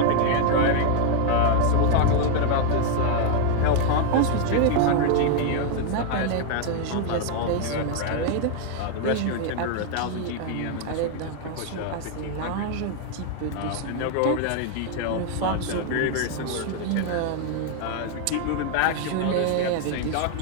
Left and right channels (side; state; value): both; different; correlation 0.00